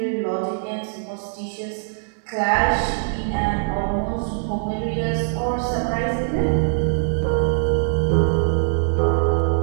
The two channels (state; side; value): silent; left; 64 dB below the other